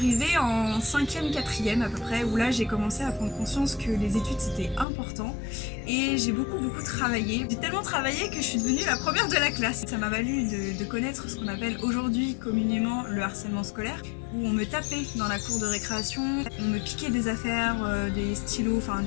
en 5e, 4e à peu près, où là j'ai commencé à prendre conscience que les études c'était important et j'ai beaucoup travaillé. J'ai tellement travaillé que je suis devenue la première de la classe. Ça m'a valu de connaître ce qu'on appelle aujourd'hui communément le harcèlement scolaire, où on me tapait dans la cour de récréation, on me piquait des affaires, des stylos, enfin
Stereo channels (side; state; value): right; drops out; at 4.9 s